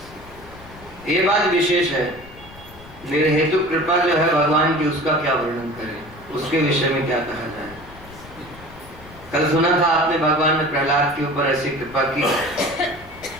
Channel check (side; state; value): left; noise; rumble, 19 dB below the sound